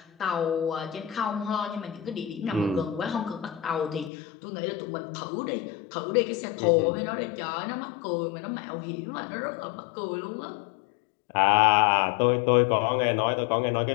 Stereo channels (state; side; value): drops out; right; at 4.1 s